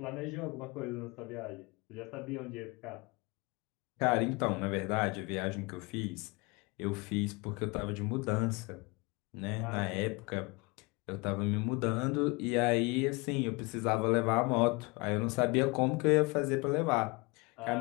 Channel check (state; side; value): quieter; right; 27.2 dB